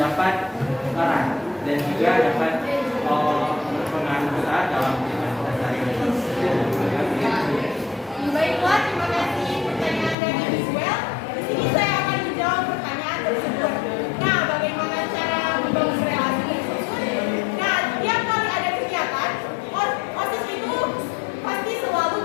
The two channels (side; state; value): right; drops out; at 10.2 s